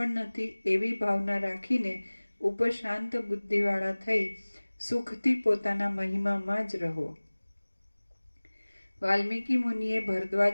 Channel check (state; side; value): inverted; both; correlation -1.00